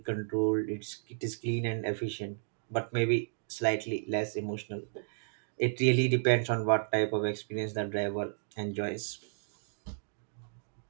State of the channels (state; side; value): silent; left; digital silence